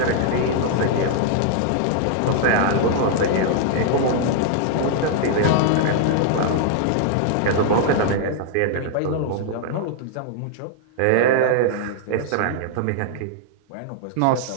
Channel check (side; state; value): both; different; correlation -0.01